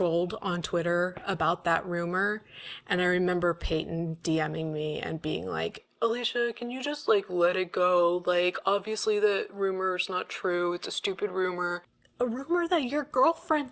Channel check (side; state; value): both; identical; correlation 1.00